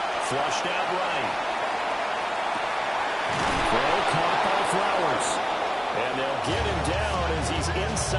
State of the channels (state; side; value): identical; both; correlation 1.00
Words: Flushed out right. Throw caught by Flowers. And they'll get him down as he's